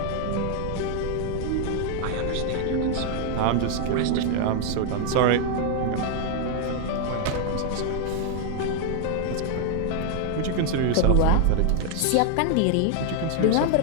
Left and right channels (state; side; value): different; both; correlation 0.00